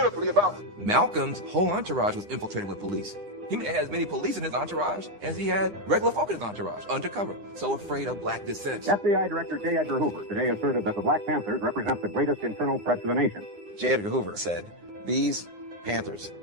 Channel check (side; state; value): left; late; 9.8 ms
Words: about. Malcolm's whole entourage was infiltrated with police. He had as many police in his entourage as he had regular folk in his entourage, undercover, so afraid of black dissent. FBI Director J. Edgar Hoover today asserted that the Black Panthers represent the greatest internal threat to the nation. J. Edgar Hoover said, these Panthers